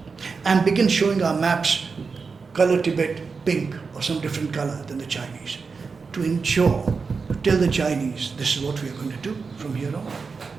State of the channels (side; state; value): left; quieter; 4.9 dB